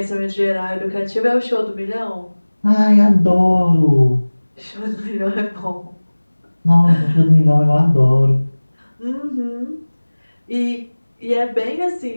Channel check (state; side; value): inverted; both; correlation -1.00